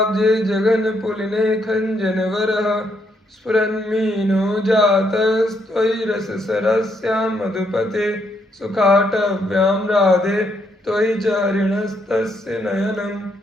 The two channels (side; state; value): both; normal; correlation 0.75